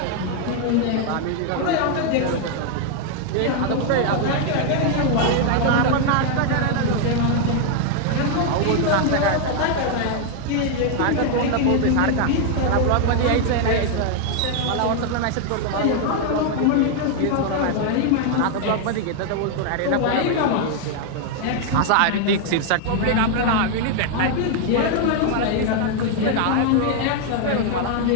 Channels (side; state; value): both; different; correlation 0.00